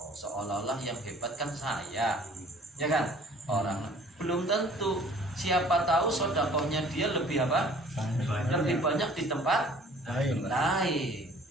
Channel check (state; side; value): normal; both; correlation 0.52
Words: seolah-olah yang hebat kan saya, ya kan? Orang belum tentu, siapa tahu sedekahnya dia lebih apa? Lebih banyak di tempat lain.